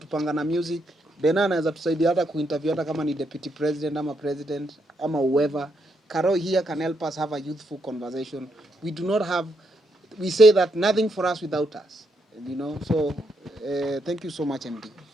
na music. Bena anaweza tusaidia hata kuinterview hata kama ni deputy president ama president ama whoever. Karo here can help us have a youthful conversation. We say that nothing for us without us. You know, so thank you so much, MD.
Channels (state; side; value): normal; both; correlation 0.78